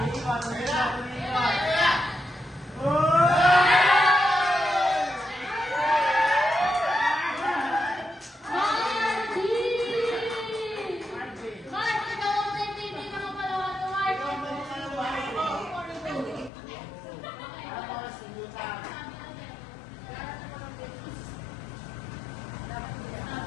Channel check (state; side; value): drops out; right; at 16.5 s